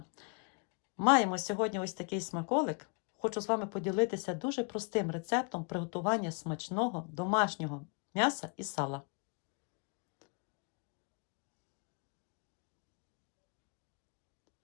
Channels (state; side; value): quieter; right; 36.3 dB